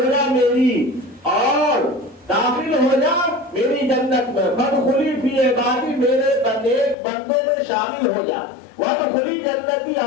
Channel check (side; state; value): right; drops out; at 7.0 s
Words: جا میری، اور داخل ہو جا میری جنت میں۔ فادخلی فی عبادی، میرے بندوں میں شامل ہو جا۔ وادخلی جنتی،